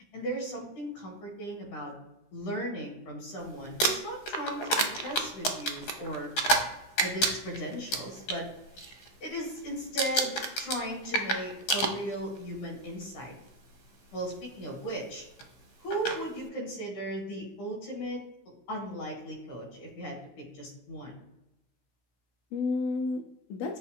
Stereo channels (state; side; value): late; right; 16 ms